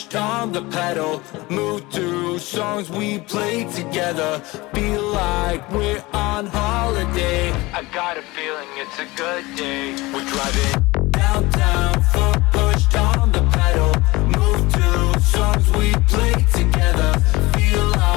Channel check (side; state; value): right; quieter; 21.6 dB